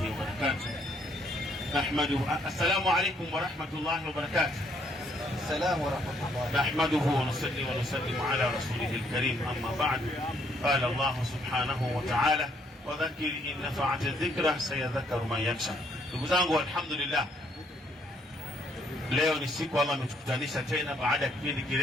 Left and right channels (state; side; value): normal; both; correlation 0.68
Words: وبركاته. نحمده. السلام عليكم ورحمة الله وبركاته. السلام ورحمة الله. نحمده ونصلي ونسلم على رسوله الكريم. أما بعد، قال الله سبحانه وتعالى: وذكر إن نفعت الذكرى سيذكر من يخشى. Ndugu zangu, alhamdulillah, leo ni siku Allah ametukutanisha tena baada ya kipindi